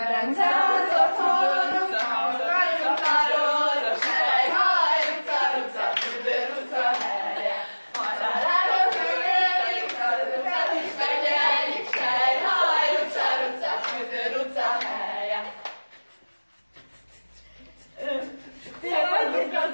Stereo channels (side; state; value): both; inverted; correlation -1.00